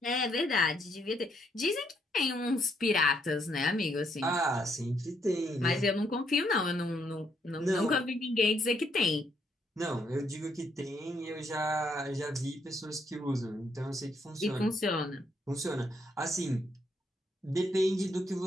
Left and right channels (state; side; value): normal; both; correlation 0.73